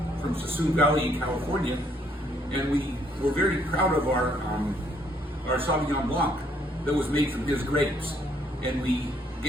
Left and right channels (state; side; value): normal; both; correlation 0.68